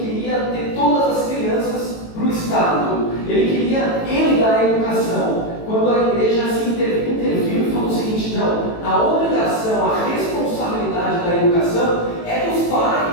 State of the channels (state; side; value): late; right; 18 ms